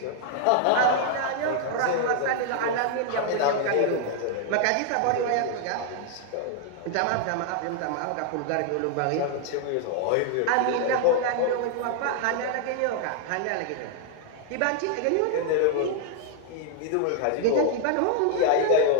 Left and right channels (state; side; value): different; both; correlation 0.00